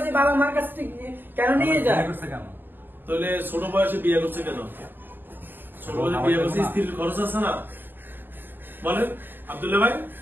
বাবা মার কাছ থেকে কেন নিয়ে যায়? করছে কেন? তাহলে ছোট বয়সে বিয়ে করছে কেন? ছোট বয়সে বিয়ে করছে, স্ত্রীর খরচ আছে না? বলেন আব্দুল্লাহ ভাই,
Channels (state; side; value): late; left; 0.094 ms